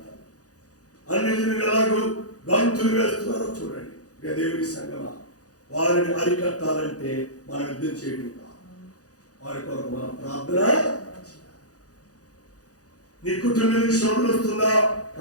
అన్యజనులు ఎలాగో గంతులు వేస్తున్నారో చూడండి. దేవుని సంగమా, వారిని అరికట్టాలంటే మనం యుద్ధం చేయడం కాదు, వారి కొరకు మనం ప్రార్థన. నీ కుటుంబానికి శ్రమ వస్తుందా?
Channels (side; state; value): right; late; 0.67 ms